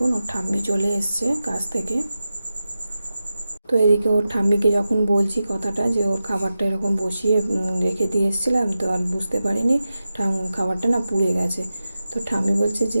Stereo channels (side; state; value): both; inverted; correlation -0.92